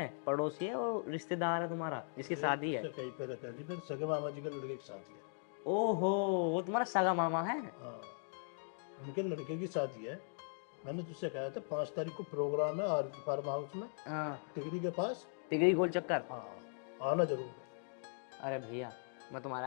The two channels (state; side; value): silent; right; digital silence